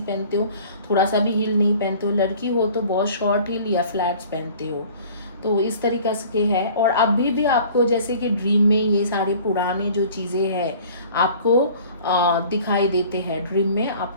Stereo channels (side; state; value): both; inverted; correlation -0.48